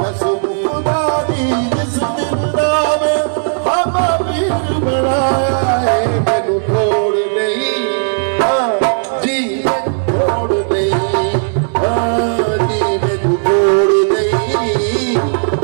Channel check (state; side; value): silent; left; digital silence